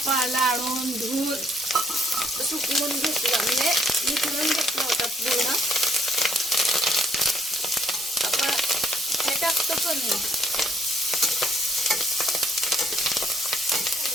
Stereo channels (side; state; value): both; normal; correlation 0.68